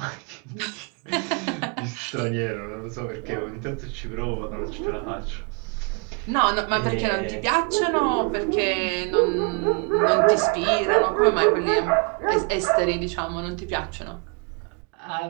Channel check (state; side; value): quieter; left; 35.8 dB